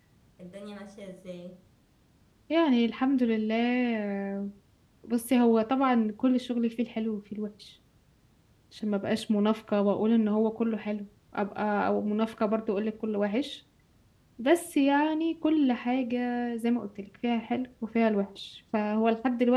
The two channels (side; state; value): both; identical; correlation 1.00